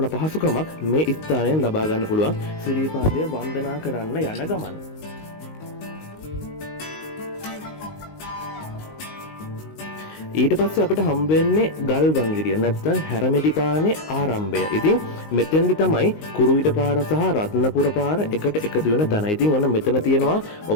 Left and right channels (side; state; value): right; late; 19 ms